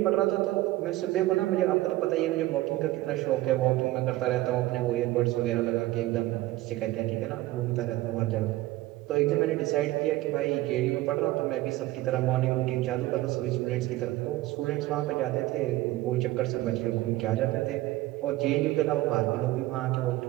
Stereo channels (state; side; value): quieter; left; 17.2 dB